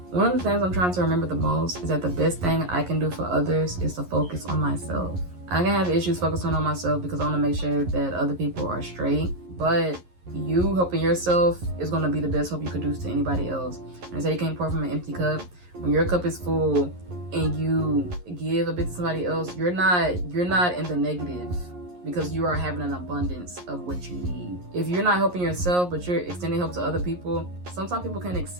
one of the things I'm trying to remember the most is that the best thing I can do for others is to focus on myself. I can have issues focusing on myself because I want to make sure that other people are straight, but you helping yourself is going to be the best help you could do to anybody else. And say you can't pour from an empty cup. When your cup is full and you give a bit to somebody else, you're not in the negative because you are having an abundance of what you need. If you're not helping yourself, but you're extending help to other people, sometimes people can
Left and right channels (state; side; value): late; left; 11 ms